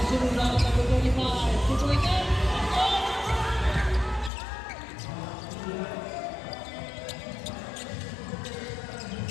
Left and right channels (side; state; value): right; drops out; at 4.3 s